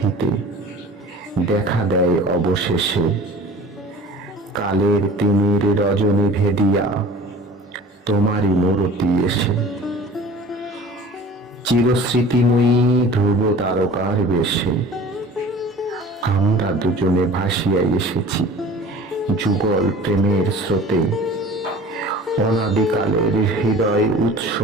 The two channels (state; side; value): normal; both; correlation 0.44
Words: দেখা দেয় অবশেষে, কালের তিমির রজনী ভেদিয়া তোমারই মূরতি এসে। চিরস্মৃতিময়ী ধ্রুব তারকার বেশে আমরা দুজনে ভাসিয়া এসেছি যুগল প্রেমের স্রোতে। অনাদিকালের হৃদয় উৎস